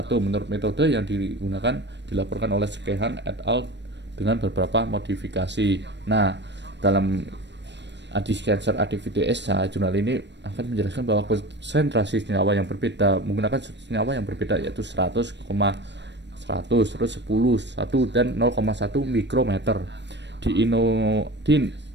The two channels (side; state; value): left; late; 0.51 ms